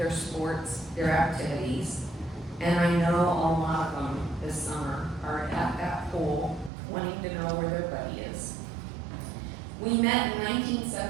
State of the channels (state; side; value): drops out; left; at 6.7 s